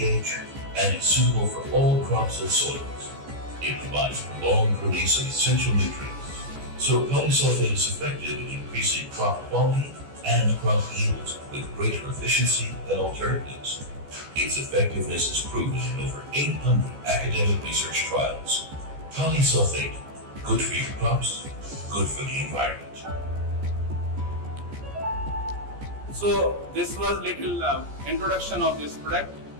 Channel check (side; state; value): left; late; 14 ms